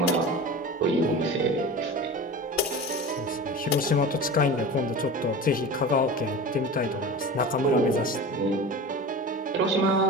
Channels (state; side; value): normal; both; correlation 0.32